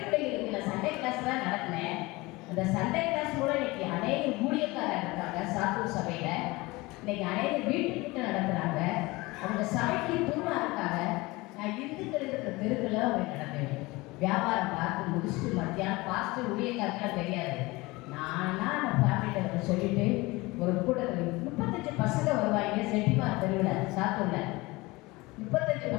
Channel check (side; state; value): right; quieter; 22.3 dB